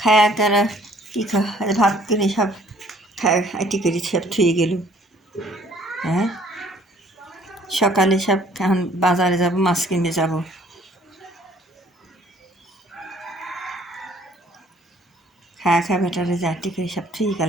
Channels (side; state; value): both; normal; correlation 0.58